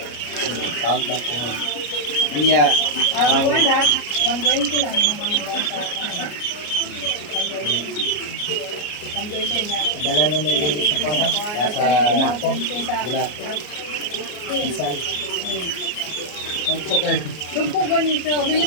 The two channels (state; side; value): late; right; 33 ms